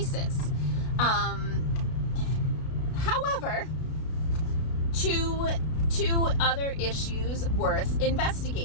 However, two other issues worth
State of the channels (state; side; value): late; right; 32 ms